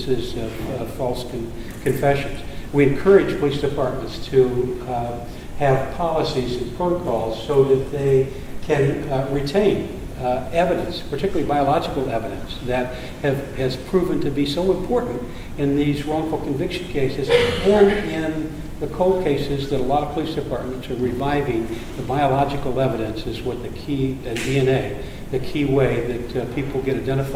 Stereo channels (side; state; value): both; identical; correlation 1.00